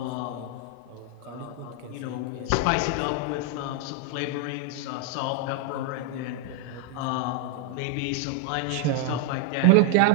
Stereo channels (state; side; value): different; both; correlation 0.00